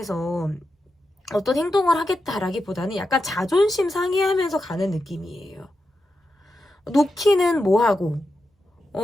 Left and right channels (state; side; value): normal; both; correlation 0.88